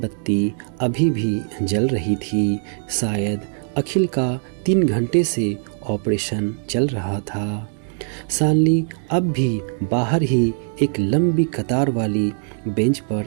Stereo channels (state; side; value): silent; left; digital silence